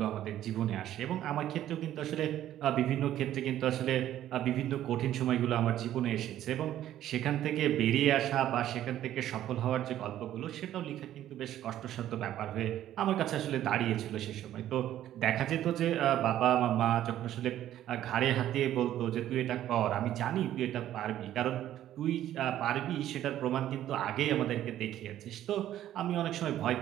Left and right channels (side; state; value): left; quieter; 12.3 dB